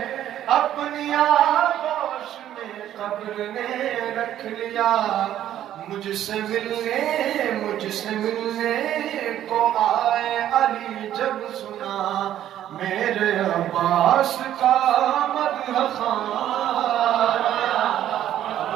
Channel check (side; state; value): left; quieter; 11.7 dB